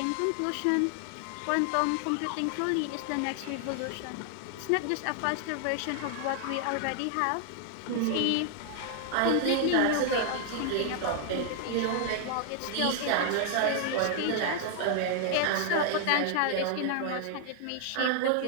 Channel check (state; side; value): different; both; correlation 0.00